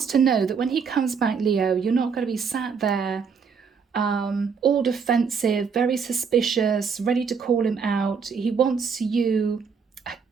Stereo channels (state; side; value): quieter; left; 6.0 dB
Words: to know that when he comes back, Leo, you're not going to be sat there all defensive, very suspicious, ready to call him out. He wants you,